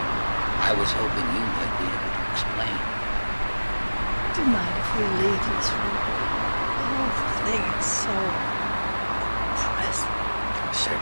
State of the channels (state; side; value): inverted; both; correlation -1.00